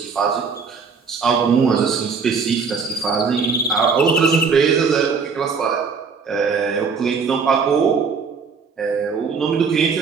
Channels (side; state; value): left; quieter; 5.4 dB